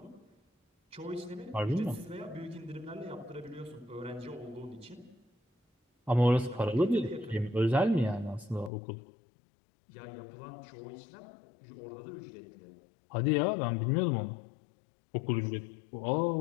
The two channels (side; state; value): right; drops out; at 8.7 s